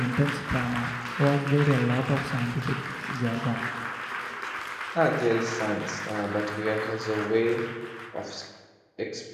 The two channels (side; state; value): both; identical; correlation 1.00